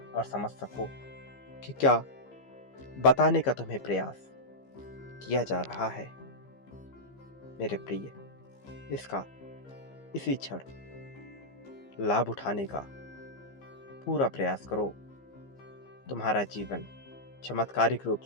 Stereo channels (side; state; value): right; late; 15 ms